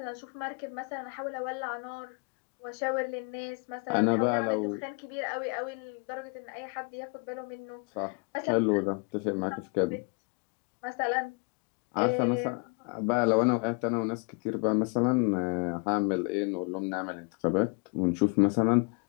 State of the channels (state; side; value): quieter; right; 35.6 dB